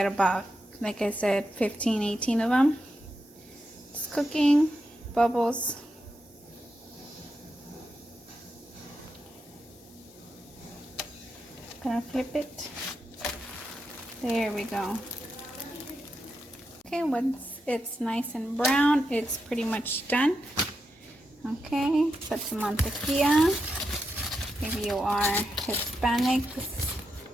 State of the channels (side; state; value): both; normal; correlation 0.86